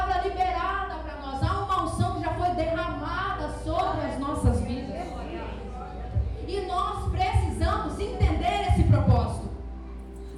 liberada para nós, há uma unção que já foi derramada sobre as nossas vidas. E nós precisamos entender esse propósito.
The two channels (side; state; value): both; identical; correlation 1.00